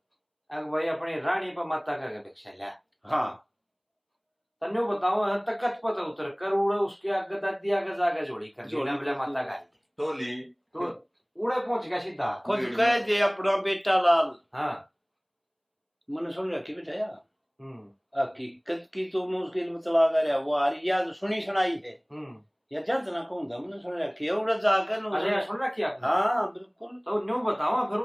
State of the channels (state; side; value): identical; both; correlation 1.00